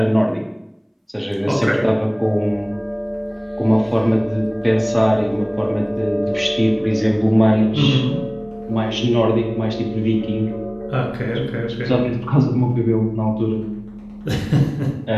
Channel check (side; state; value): both; identical; correlation 1.00